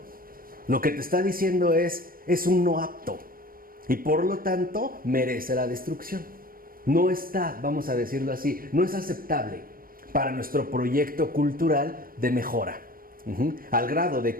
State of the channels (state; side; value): late; left; 0.41 ms